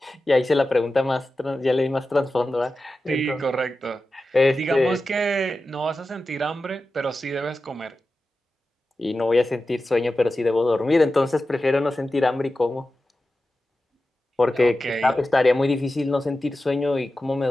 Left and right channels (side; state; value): both; normal; correlation 0.93